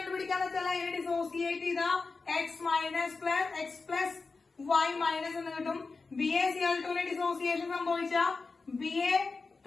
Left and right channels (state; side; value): quieter; right; 4.2 dB